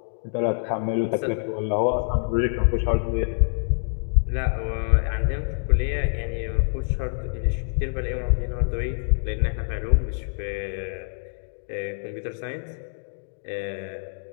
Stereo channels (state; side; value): silent; right; digital silence